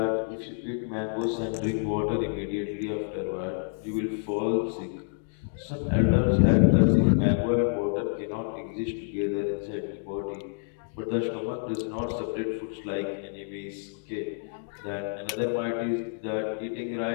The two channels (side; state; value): right; silent; digital silence